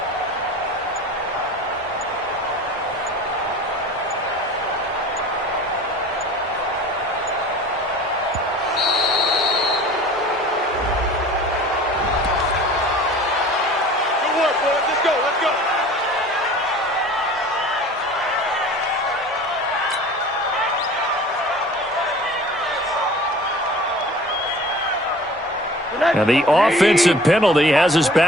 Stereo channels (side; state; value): both; normal; correlation 0.43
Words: And the offensive penalty has us